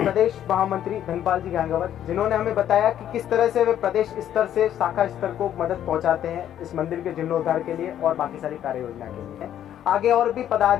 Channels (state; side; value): quieter; right; 10.8 dB